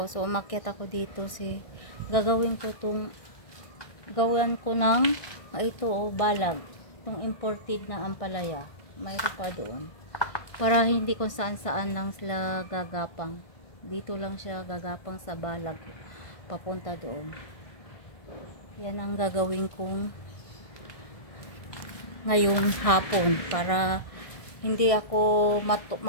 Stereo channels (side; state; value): right; late; 1.6 ms